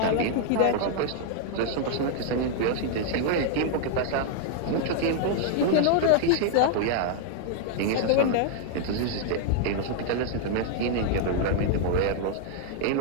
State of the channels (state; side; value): different; both; correlation 0.00